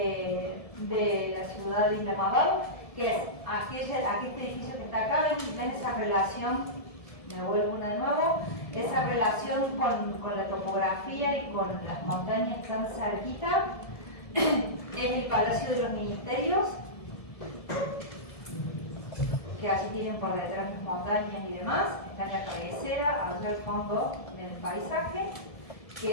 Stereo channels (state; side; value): late; right; 1.7 ms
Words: la ciudad de Isla Madal, que es este edificio que está acá, ven esa relación, me vuelvo una de nuevo, esa relación con la topografía y con las montañas tan cerquita, es el Palacio de los Ministerios, que allí tienen por detrás las montañas y demás, está en la cabecera, allá al fondo del paisaje,